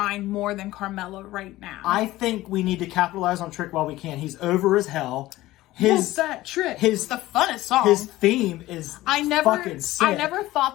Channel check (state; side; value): quieter; right; 16.9 dB